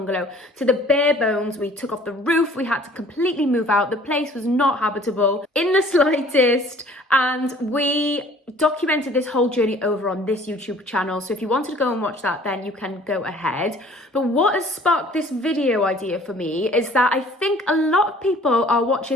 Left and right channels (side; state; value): both; normal; correlation 0.53